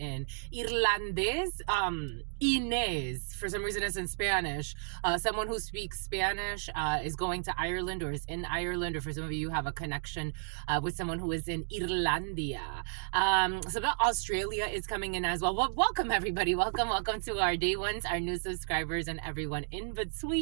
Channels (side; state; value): left; silent; digital silence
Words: Irlandés. Inez, for some reason it's in Spanish. Someone who speaks Spanish is going to Ireland or is in Ireland, or for some of you have a connection with someone who is in Irlandia. So that Australia is coming in as well. Well, welcome everybody. Welcome to our day ones, our new subscribers, and everyone in